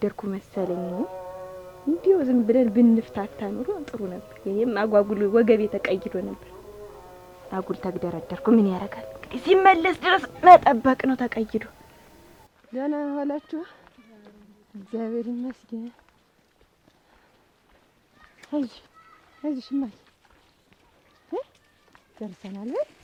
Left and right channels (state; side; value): identical; both; correlation 1.00